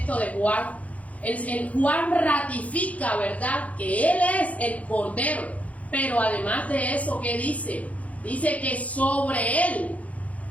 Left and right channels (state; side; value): late; right; 0.068 ms